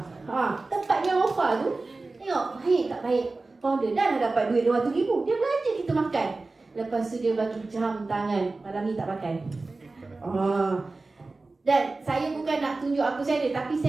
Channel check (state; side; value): quieter; left; 3.5 dB